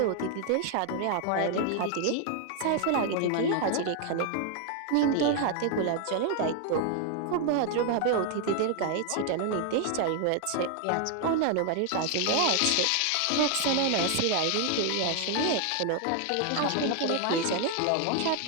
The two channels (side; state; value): both; different; correlation 0.00